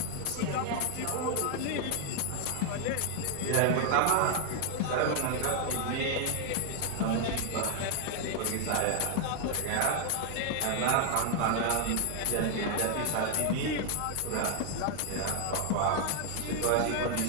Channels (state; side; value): different; both; correlation 0.00